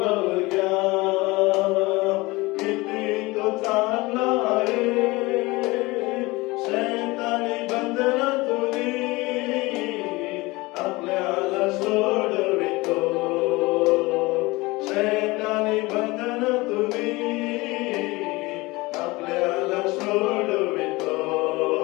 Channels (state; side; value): quieter; right; 22.4 dB